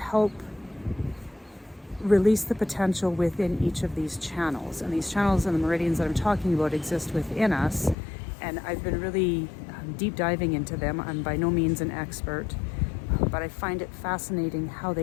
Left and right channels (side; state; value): right; drops out; at 8.0 s